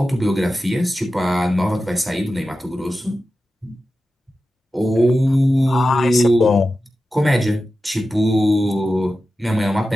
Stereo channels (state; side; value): normal; both; correlation 0.93